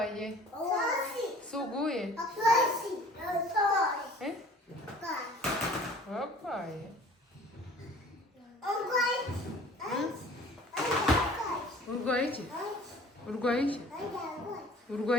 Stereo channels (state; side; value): normal; both; correlation 0.48